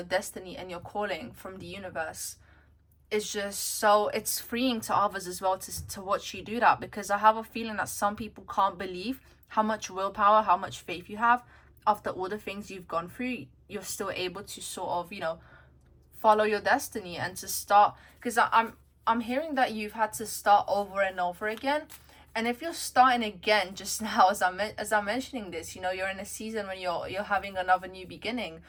destiny and your calling from the universe is just so, it's freeing to others as well to watch you do that. Because I have a feeling that some people can't believe how much willpower, how much faith you have. After all the things you've gone through, you're still able to sort of, you know, follow your destiny and to start. Because I'm hearing that you've had to start over and over again. And if you're starting again just now, as I'm mentioning this, you know, you're in a season when you're having another new beginning.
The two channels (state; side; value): identical; both; correlation 1.00